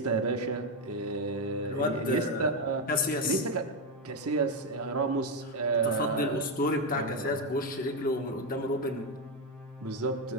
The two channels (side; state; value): both; normal; correlation 0.07